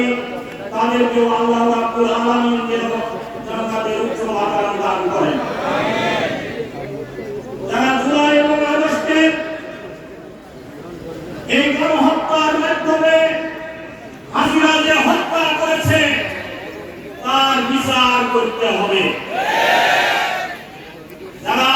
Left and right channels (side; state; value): both; identical; correlation 1.00